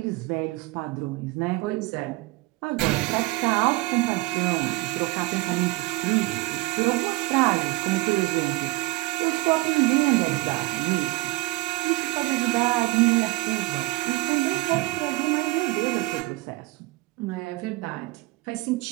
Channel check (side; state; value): left; quieter; 21.1 dB